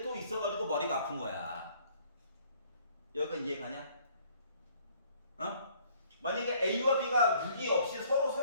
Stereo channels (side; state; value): both; inverted; correlation -0.60